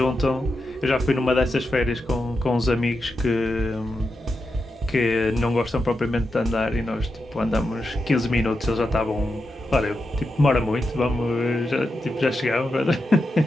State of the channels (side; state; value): both; normal; correlation 0.88